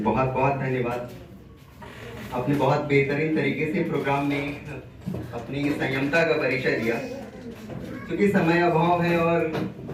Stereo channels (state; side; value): identical; both; correlation 1.00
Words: बहुत धन्यवाद। आपने बहुत बेहतरीन तरीके से प्रोग्राम में अपनी संयमता का परिचय दिया। क्योंकि समय अभाव है